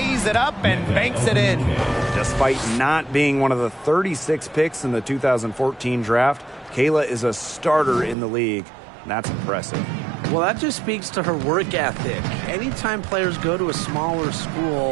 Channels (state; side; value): drops out; left; at 8.2 s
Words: it up and banks it in. Despite not being one of the 36 picks in the 2014 draft, Kayla is a starter in the league. That's impressive. Well, that just speaks to her work ethic. Anytime players go to a smaller